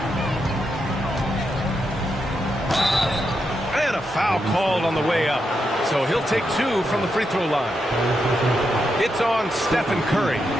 And a foul called on the way up. So he'll take 2 from the free throw line. It's on Stephen Curry.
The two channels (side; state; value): both; normal; correlation 0.84